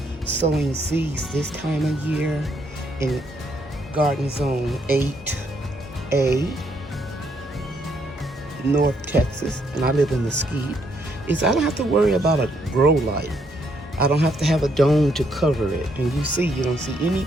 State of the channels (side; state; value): both; normal; correlation 0.73